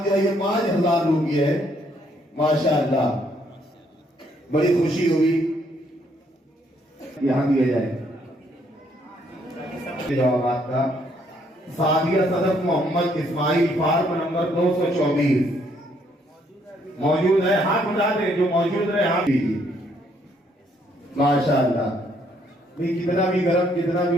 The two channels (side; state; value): both; normal; correlation 0.69